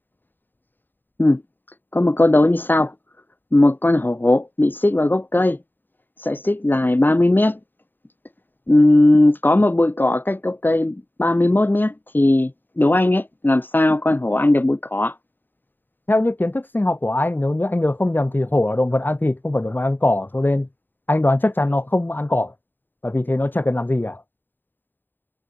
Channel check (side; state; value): right; late; 0.092 ms